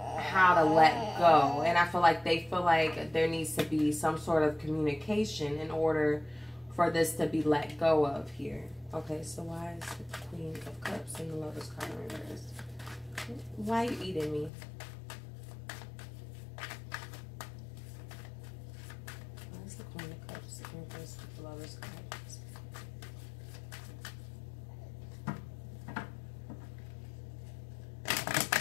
how to let go. And I feel like they feel like there needs to be some sort of communication in order for this to be let go of here. Okay, so why is the Queen of Cups and the Lover's card in reverse? Why are you eating me? Why is the Queen of Cups in reverse with the Lover's card?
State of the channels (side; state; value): right; drops out; at 14.5 s